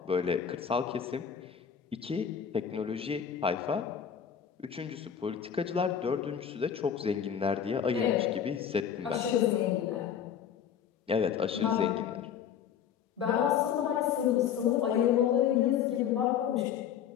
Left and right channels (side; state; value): right; quieter; 8.4 dB